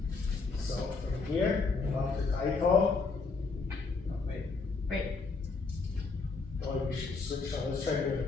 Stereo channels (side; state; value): right; quieter; 4.2 dB